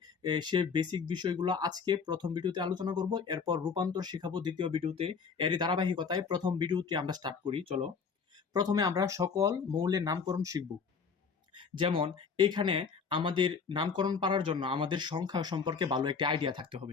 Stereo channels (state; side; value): quieter; right; 5.7 dB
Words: সে বেসিক বিষয়গুলো আজকে প্রথম ভিডিওতে আলোচনা করব, এরপর রূপান্তর শেখাবো দ্বিতীয় ভিডিওতে। এরই ধারাবাহিকতায় প্রথম ভিডিওটি আমরা স্টার্ট করি। চলো, প্রথমে আমরা সকল মৌলের নামকরণ শিখব। যেমন এখানে আমাদের নামকরণ পারার জন্য আমাদের সংখ্যা সম্পর্কে ভালো একটা আইডিয়া থাকতে হবে।